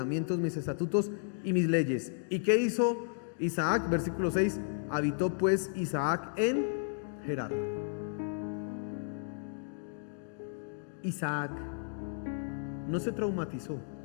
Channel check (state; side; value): silent; right; digital silence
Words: mis estatutos y mis leyes. ¿Y qué hizo Isaac? Versículo 6. Habitó pues Isaac en Gerar. Isaac no se traumatizó.